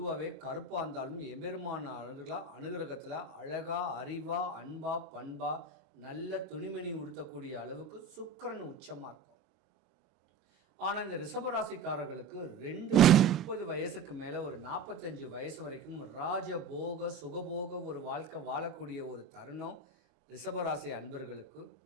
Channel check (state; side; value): quieter; left; 4.2 dB